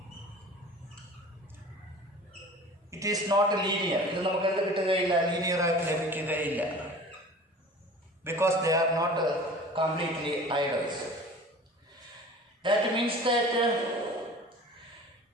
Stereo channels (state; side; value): normal; both; correlation 0.41